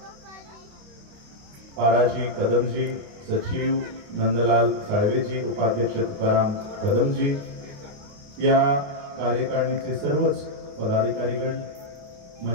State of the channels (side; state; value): left; late; 29 ms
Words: पाराजी कदमजी, सचिव नंदलाल साळवेजी, उपाध्यक्ष तुकाराम कदमजी, या कार्यकारिणीचे सर्वच पदाधिकारीगण,